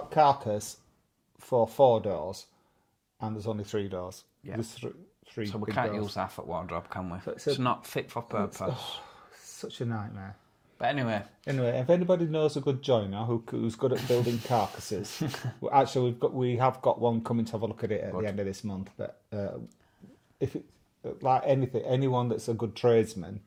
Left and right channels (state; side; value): identical; both; correlation 1.00